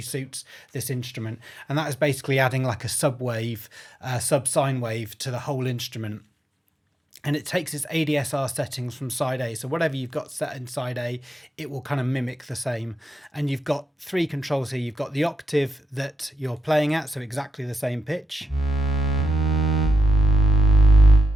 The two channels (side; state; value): both; normal; correlation 0.85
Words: suits this instrument. And that is basically adding like a sub wave, sub sine wave to the whole instrument. And it takes its ADSR settings from side A. So whatever you've got set in side A, it will kind of mimic the same. And you've got three controls here. You've got the octave that you're playing at, so exactly the same pitch.